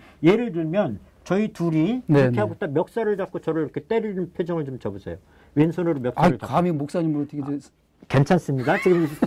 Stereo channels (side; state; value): both; identical; correlation 1.00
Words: 예를 들면 저희 둘이 이렇게 하고 딱 멱살을 잡고 저를 이렇게 때리는 표정을 좀 줘보세요. 왼손으로 멱살을 잡고. 감히 목사님을 어떻게 괜찮습니다. 지금